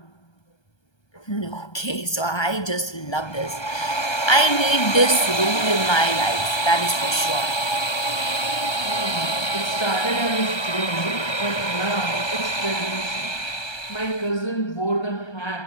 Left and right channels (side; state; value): right; late; 1.3 ms